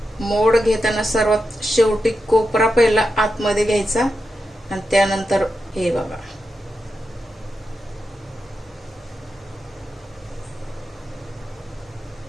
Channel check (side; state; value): both; normal; correlation 0.88